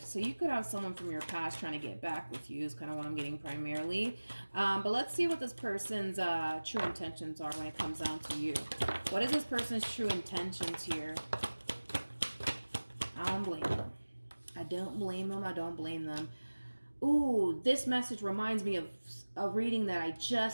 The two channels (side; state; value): both; inverted; correlation -1.00